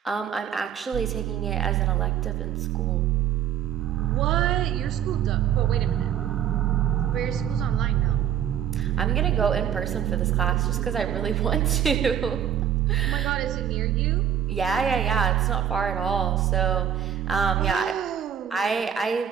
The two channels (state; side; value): quieter; left; 9.2 dB